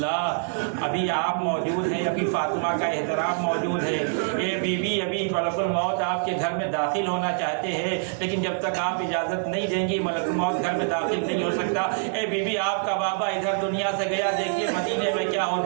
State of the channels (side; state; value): left; silent; digital silence